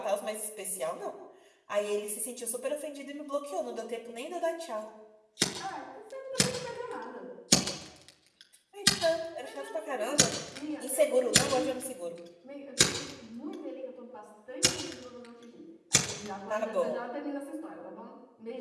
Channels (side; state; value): both; identical; correlation 1.00